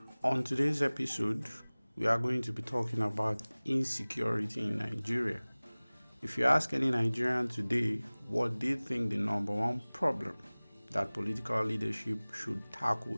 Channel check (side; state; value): both; inverted; correlation -1.00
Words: On today's episode, we are going to be talking about insecurity in Nigeria. If you ask any Nigerian today what they think the number one problem that political leadership should